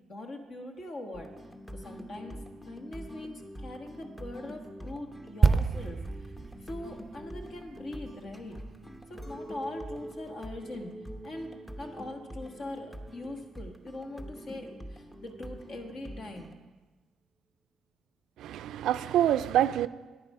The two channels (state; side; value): quieter; left; 5.2 dB